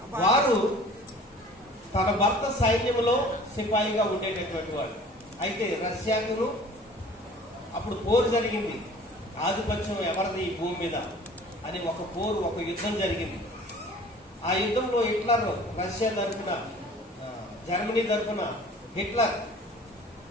వారు తన భర్త సైన్యంలో సిపాయిగా ఉండేటటువంటి వాడు. అయితే రష్యాకు అప్పుడు పోరు జరిగింది. ఆధిపత్యం ఎవరిది ఈ భూమి మీద అని ఒక యుద్ధం జరిగింది. ఆ యుద్ధంలో హిట్లర్, రష్యా తరఫున, జర్మనీ తరఫున హిట్లర్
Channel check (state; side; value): normal; both; correlation 0.47